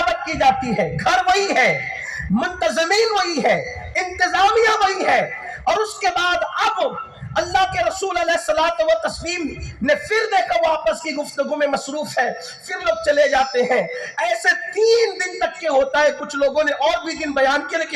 کی جاتی ہے، گھر وہی ہے، منتظمین وہی ہے، انتظامیہ وہی ہے، اور اس کے بعد اب اللہ کے رسول علیہ الصلوۃ والتسلیم نے پھر دیکھا وہ آپس کی گفتگو میں مصروف ہے، پھر لوگ چلے جاتے ہیں۔ ایسے 3 دن تک کے ہوتا ہے، کچھ لوگوں نے اور بھی دن بیان کیے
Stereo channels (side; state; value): both; identical; correlation 1.00